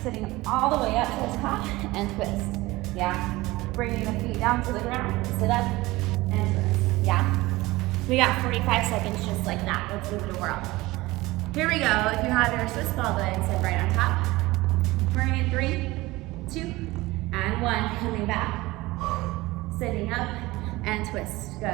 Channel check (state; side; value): quieter; left; 20.0 dB